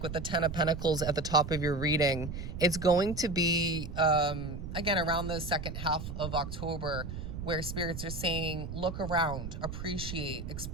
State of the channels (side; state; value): right; noise; rumble, 7 dB below the sound